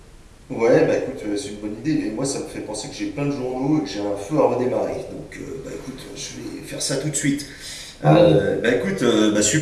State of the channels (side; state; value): both; identical; correlation 1.00